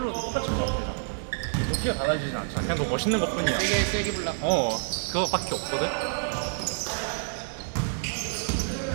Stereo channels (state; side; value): silent; left; digital silence